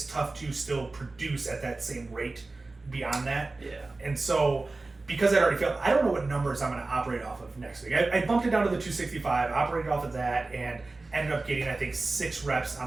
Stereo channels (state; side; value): quieter; left; 3.4 dB